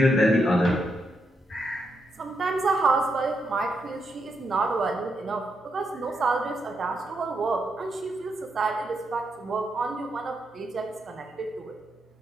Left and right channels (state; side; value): normal; both; correlation 0.81